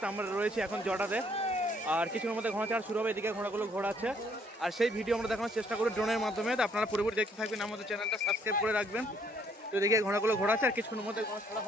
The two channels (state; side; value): normal; both; correlation 0.66